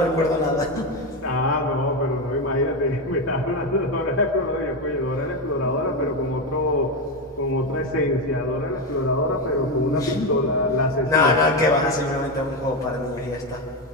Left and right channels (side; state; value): both; normal; correlation 0.11